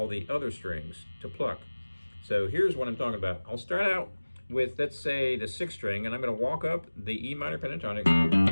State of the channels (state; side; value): inverted; both; correlation -1.00